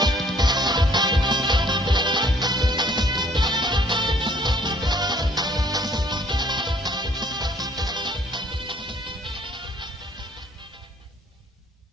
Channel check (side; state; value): both; normal; correlation 0.60